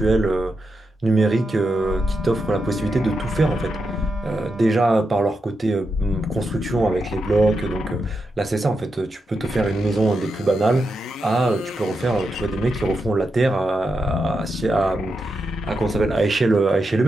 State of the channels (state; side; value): normal; both; correlation 0.86